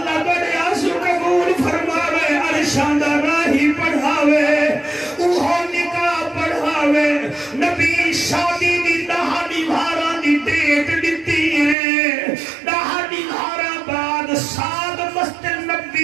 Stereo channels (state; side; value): drops out; left; at 11.8 s